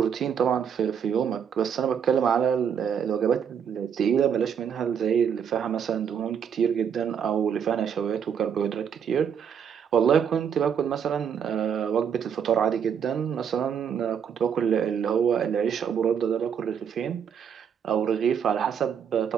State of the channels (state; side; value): quieter; left; 7.7 dB